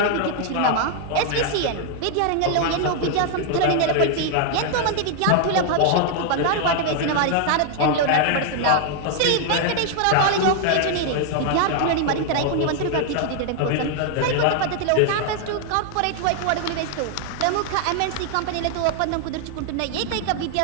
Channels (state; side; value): different; both; correlation 0.00